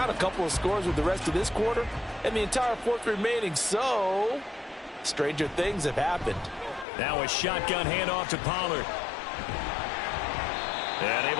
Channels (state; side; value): drops out; right; at 6.9 s